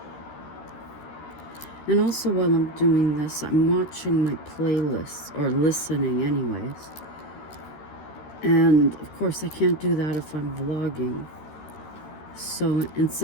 And also while I'm doing this, I'm watching my playlists, or listening anyways. And of course I can't do that if I'm vlogging. So in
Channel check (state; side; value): late; right; 13 ms